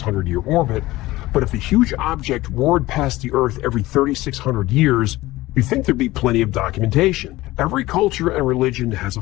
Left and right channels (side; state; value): right; quieter; 18.2 dB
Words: orbit, but if a huge object roared past the Earth every 3,600 years, you'd think there'd be plenty of documentation. Every culture and religion has a